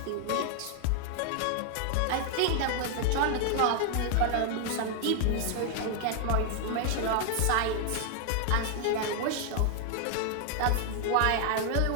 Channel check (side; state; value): both; different; correlation 0.00